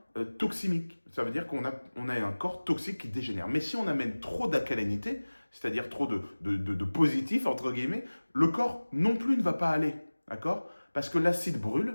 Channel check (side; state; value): both; inverted; correlation -1.00